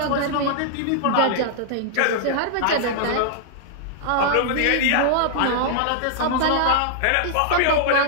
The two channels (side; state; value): both; different; correlation -0.01